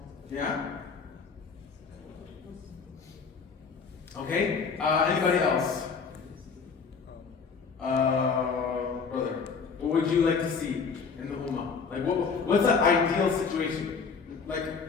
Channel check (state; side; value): quieter; right; 5.4 dB